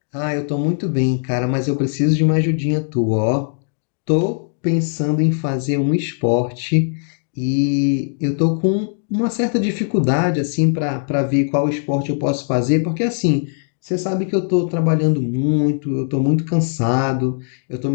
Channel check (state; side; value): silent; right; digital silence